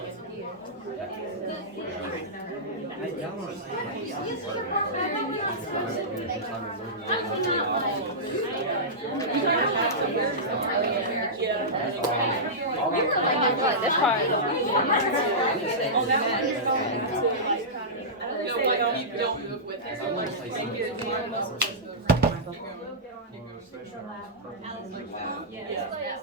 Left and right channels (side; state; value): both; normal; correlation -0.15